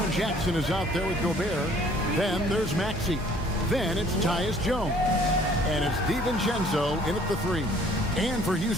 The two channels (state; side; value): normal; both; correlation 0.57